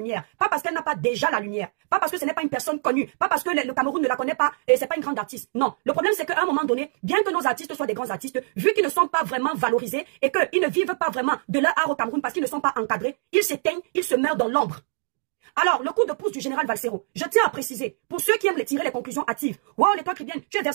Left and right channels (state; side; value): silent; left; digital silence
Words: Pas parce qu'elle n'a pas déjà la lumière, pas parce que ce n'est pas une personne connue, pas parce que le Cameroun ne la connaît pas et c'est pas une grande artiste. Non, le problème c'est qu'à un moment donné, bien que nos artistes soient des grands artistes, vu qu'ils ne sont pas vraiment valorisés et qu'ils ne vivent pas vraiment de leur art au Cameroun parce qu'ils ne sont pas encadrés, ils s'éteignent, ils se meurent dans l'ombre. Alors, le coup de pouce du général Valsero, je tiens à préciser, pour ceux qui aiment tirer les conclusions hâtives, wow, les toi Cribienne, tu es